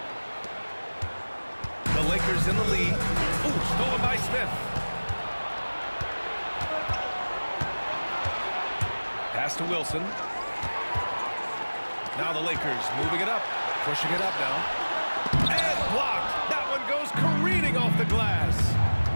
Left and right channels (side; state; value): both; inverted; correlation -1.00